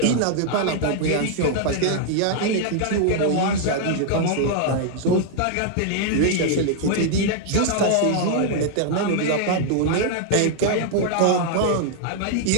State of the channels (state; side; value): different; both; correlation 0.00